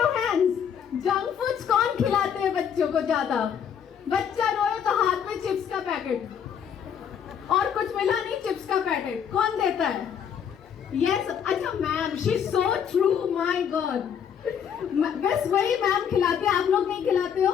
hands. Junk foods कौन खिलाते हैं बच्चों को ज्यादा? बच्चा रोए तो हाथ में चिप्स का पैकेट, और कुछ मिला नहीं, चिप्स का पैकेट कौन देता है? यस. अच्छा ma'am, she is so true, my God. बस वही मैम खिलाते हैं, आप लोग नहीं खिलाते हो?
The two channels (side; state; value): right; quieter; 8.1 dB